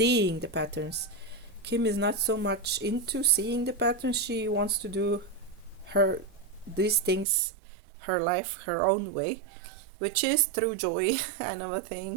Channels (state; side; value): drops out; left; at 7.2 s